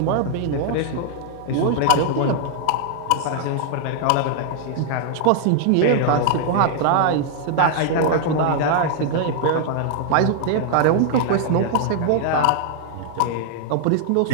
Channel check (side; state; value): both; different; correlation 0.00